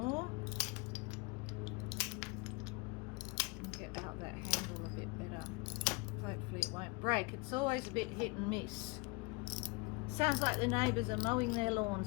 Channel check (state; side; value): quieter; right; 27.7 dB